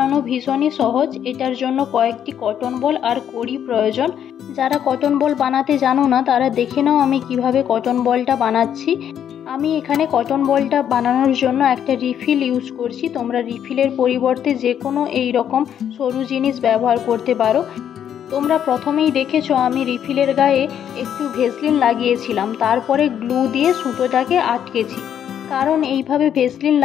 ভীষণই সহজ। এটার জন্য কয়েকটি কটন বল আর কড়ি প্রয়োজন। যারা কটন বল বানাতে জানো না তারা দেখে নাও আমি কিভাবে কটন বলটা বানাচ্ছি। আমি এখানে কটন বলটা বানানোর জন্য একটা রিফিল ইউজ করছি। তোমরা রিফিলের পরিবর্তে যে কোনো এই রকম সরু জিনিস ব্যবহার করতে পারো। তোমরা প্রথমেই দেখেছো আমি রিফিলের গায়ে একটু ভেসলিন লাগিয়েছিলাম, তারপরে গ্লু দিয়ে সুতোটাকে আটকেছি। কারণ এইভাবে ভেসলিন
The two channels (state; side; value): quieter; right; 9.4 dB